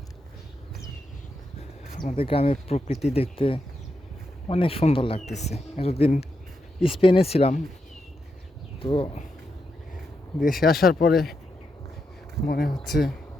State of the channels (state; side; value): normal; both; correlation 0.84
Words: আমাদের গ্রামের প্রকৃতি দেখতে অনেক সুন্দর লাগতেছে। এতদিন স্পেনে ছিলাম, তো দেশে আসার পরে মনে হচ্ছে